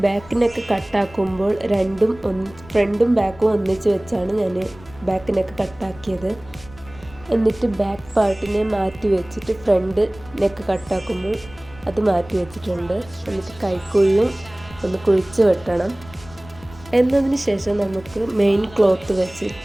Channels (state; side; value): noise; left; rumble, 21 dB below the sound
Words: ബാക്കിനൊക്കെ കട്ടാക്കുമ്പോൾ ഫ്രണ്ടും ബാക്കും ഒന്നിച്ച് വെച്ചാണ് ഞാൻ ബാക്കിനൊക്കെ കട്ടാക്കിയത്. എന്നിട്ട് ബാക്ക് പാർട്ടിനെ മാറ്റി വെച്ചിട്ട് ഫ്രണ്ട് നെക്ക് കട്ടാക്കുമ്പോൾ അത് മാറ്റി വെച്ചിട്ടുണ്ട്. എന്നിട്ട് കൈക്കുഴിയും ഒന്ന് കുഴിച്ച് വെട്ടണം. എന്നതിന് ശേഷം നമുക്ക് മെയിൻ ക്ലോത്ത്